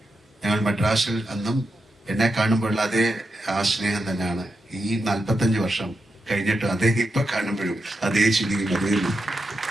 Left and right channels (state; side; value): normal; both; correlation 0.87